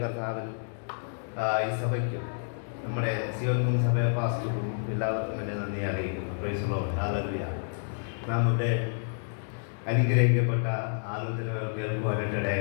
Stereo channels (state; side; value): silent; right; 58 dB below the other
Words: കർത്താവിനും ഈ സഭയ്ക്കും നമ്മുടെ സിയോൻ മൂന്ന് സഭ പാസ്റ്റർക്കും എല്ലാവർക്കും എൻ്റെ നന്ദി അറിയിക്കുന്നു. Price the Lord, hallelujah. നാം ഇവിടെ അനുഗ്രഹിക്കപ്പെട്ട ആലോചനകൾ കേൾക്കുവാനായിട്ട്